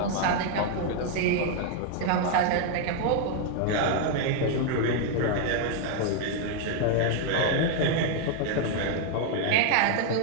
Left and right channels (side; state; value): both; different; correlation 0.00